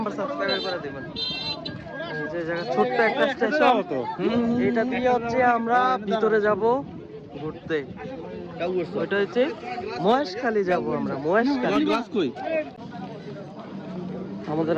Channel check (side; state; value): both; identical; correlation 1.00